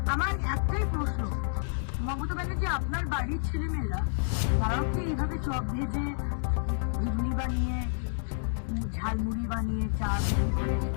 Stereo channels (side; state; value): right; silent; digital silence